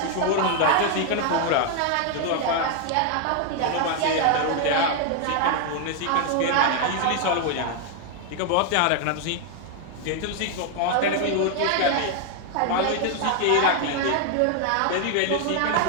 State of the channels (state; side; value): different; both; correlation 0.00